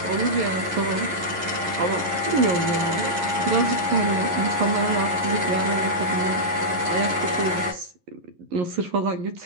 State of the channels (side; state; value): left; late; 11 ms